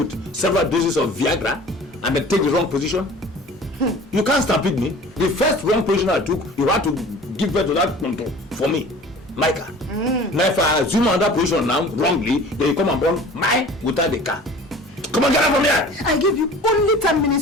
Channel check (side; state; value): both; normal; correlation 0.44